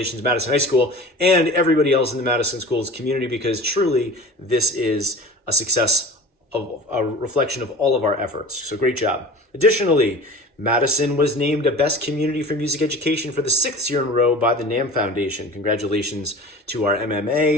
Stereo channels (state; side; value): normal; both; correlation 0.39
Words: Madison High School, and everybody else in the Madison Schools community, because truly this is a success of a reflection of all of our efforts. So great job. Additionally, Madison was named a Best Community for Music Education for the 6th year in a row by the NAMM Foundation. Congratulations to our